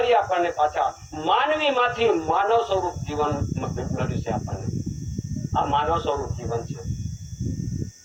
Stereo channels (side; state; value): both; identical; correlation 1.00